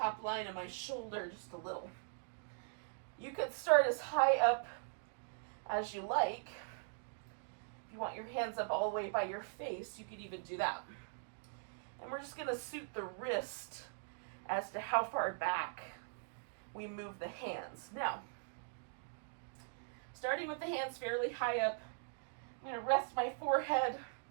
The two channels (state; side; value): silent; left; digital silence